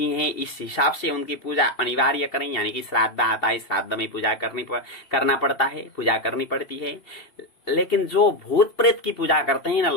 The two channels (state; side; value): late; right; 2.7 ms